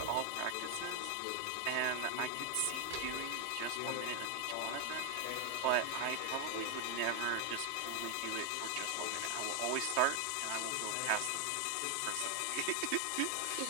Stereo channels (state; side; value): different; both; correlation 0.01